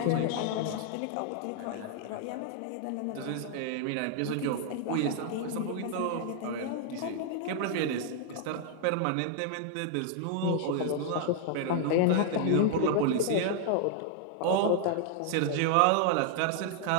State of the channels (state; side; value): different; both; correlation 0.00